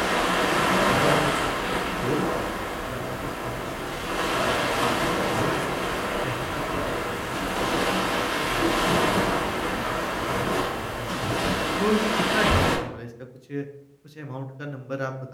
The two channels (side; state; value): both; identical; correlation 1.00